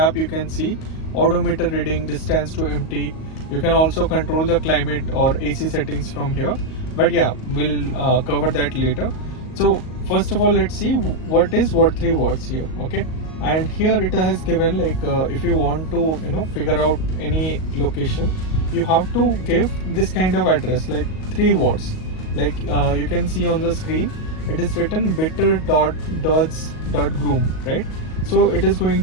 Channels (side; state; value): right; late; 38 ms